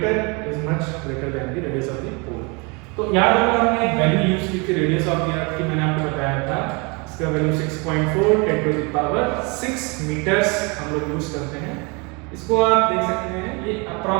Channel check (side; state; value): left; quieter; 30.1 dB